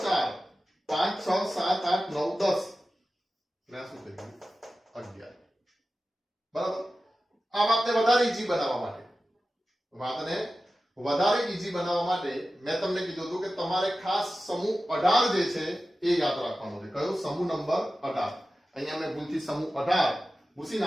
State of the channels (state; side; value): normal; both; correlation 0.94